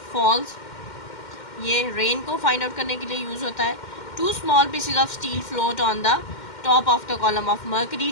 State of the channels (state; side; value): late; right; 2.1 ms